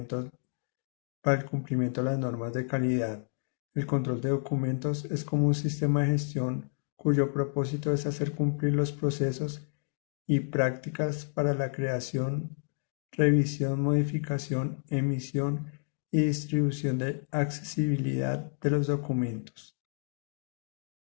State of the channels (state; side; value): silent; right; 58 dB below the other